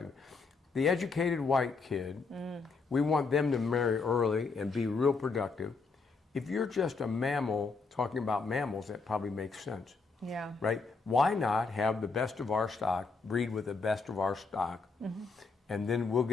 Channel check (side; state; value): right; quieter; 4.4 dB